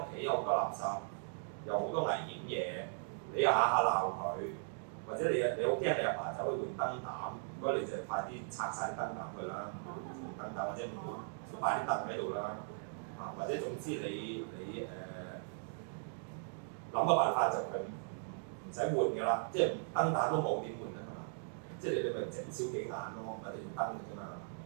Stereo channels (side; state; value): left; silent; digital silence